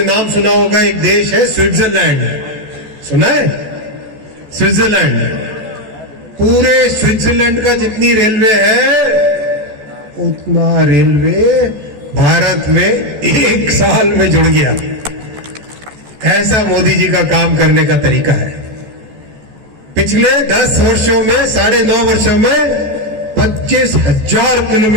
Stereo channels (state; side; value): late; left; 14 ms